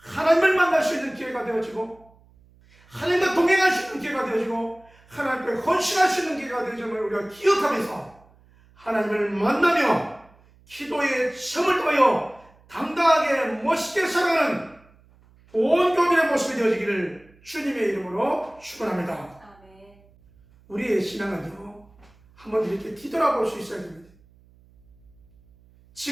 만날 수 있는 기회가 되어지고, 하나님과 동행할 수 있는 기회가 되어지고, 하나님께 헌신할 수 있는 기회가 되어짐을 우리가 기억하면서 하나님을 만나며 기도의 시험을 통하여 당당하게 멋있게 살아가는 온 교민의 모습이 되어지기를 주님의 이름으로 축원합니다. 아멘. 우리의 신앙은요, 한번 이렇게 뒤돌아볼 수 있어야 됩니다.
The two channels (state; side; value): noise; right; hum, 29 dB below the sound